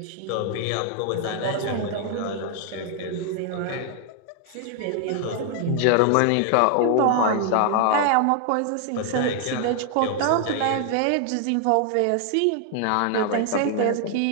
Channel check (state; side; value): different; both; correlation 0.00